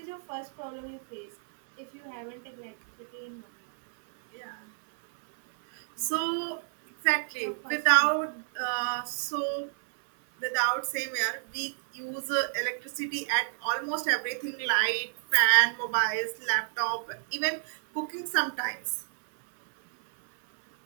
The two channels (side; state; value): left; silent; 58 dB below the other